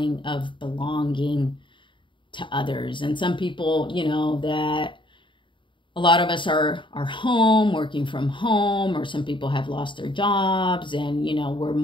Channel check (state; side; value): late; right; 0.24 ms